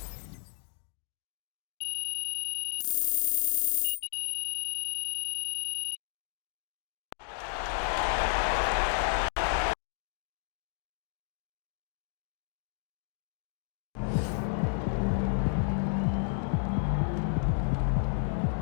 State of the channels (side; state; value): right; silent; digital silence